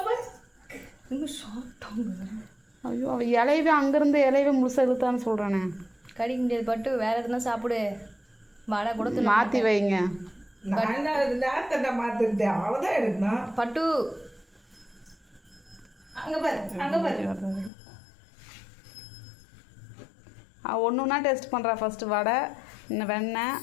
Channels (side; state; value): right; drops out; at 17.7 s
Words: ஐயோ அவள் இலையவே அங்கேருந்து இலையவே முழுசாக இழுத்தான்னு சொல்கிறானே. கடிக்க முடியாது பட்டு வேறு எதுனா சாப்பிடு. வடை கூட மாற்றி வைங்க. மாற்றிருந்தேன் அவ்வளோதான் எடுக்கணும். பட்டு அங்கே பாரு ஒன்றுனா டேஸ்ட் பண்ணுறா. ஃபஸ்ட்டு வடை, இன்னும் வெண்ணெய்,